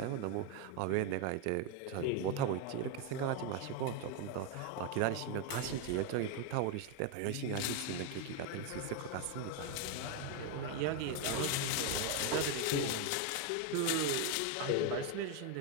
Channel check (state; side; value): different; both; correlation 0.01